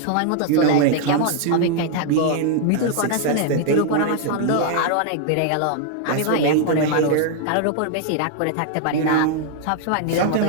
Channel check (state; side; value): different; both; correlation 0.00